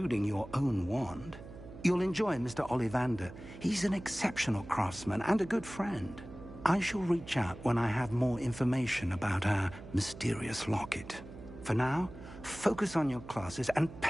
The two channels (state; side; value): noise; right; hum, 15 dB below the sound